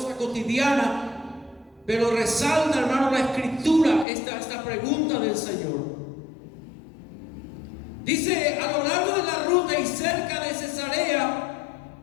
cotidianas. Pero resalta, hermano, la escritura, esta pregunta del Señor. Dice, a lo largo de la ruta y cerca de Cesarea,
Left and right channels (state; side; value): drops out; right; at 4.0 s